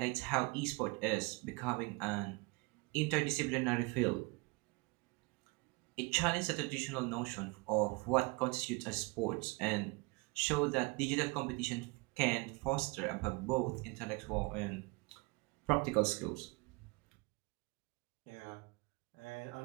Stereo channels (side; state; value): left; quieter; 26.9 dB